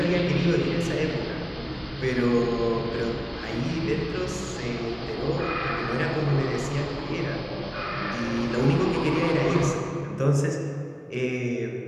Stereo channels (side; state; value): both; identical; correlation 1.00